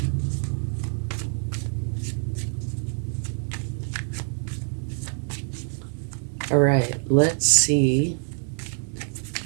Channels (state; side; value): silent; left; 61 dB below the other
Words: All right, let's see